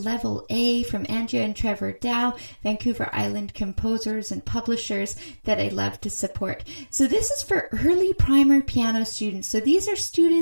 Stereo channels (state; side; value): inverted; both; correlation -1.00